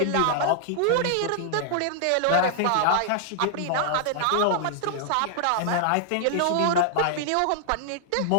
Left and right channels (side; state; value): both; different; correlation -0.01